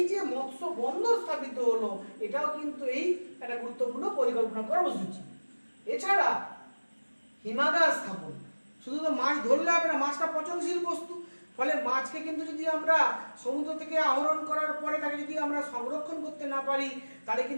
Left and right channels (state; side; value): inverted; both; correlation -1.00